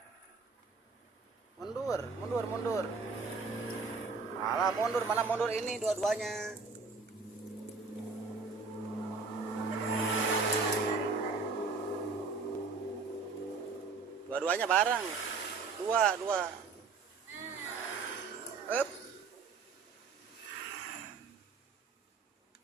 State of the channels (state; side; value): quieter; left; 4.6 dB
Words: Mundur, mundur, mundur. Malah mundur, mana mundur ini dua-duanya. Dua-duanya bareng. Dua, dua. Up.